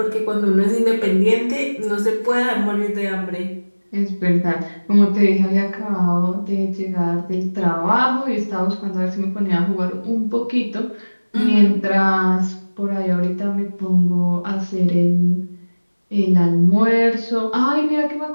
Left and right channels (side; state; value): both; inverted; correlation -1.00